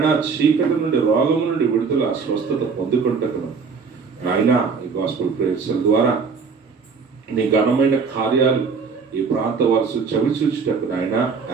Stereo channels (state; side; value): quieter; left; 5.3 dB